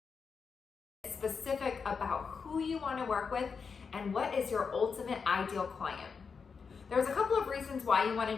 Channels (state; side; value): quieter; right; 5.6 dB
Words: about who you want to work with and what is your ultimate ideal client. There's a couple of reasons why you want